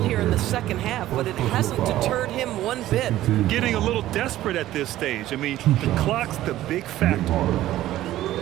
in the second half, but it hasn't deterred him one bit. Getting a little desperate at this stage. I mean, the clock's the big factor.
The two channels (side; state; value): left; quieter; 14.4 dB